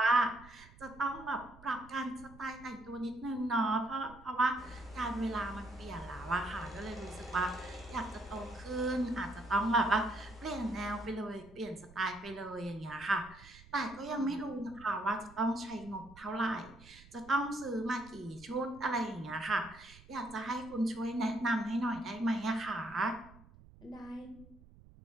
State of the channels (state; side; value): noise; right; rumble, 21 dB below the sound